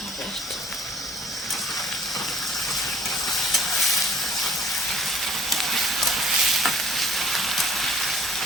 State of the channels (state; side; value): normal; both; correlation 0.54